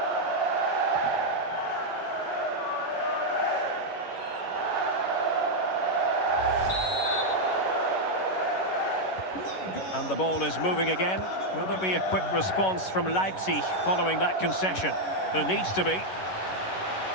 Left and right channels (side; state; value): right; late; 11 ms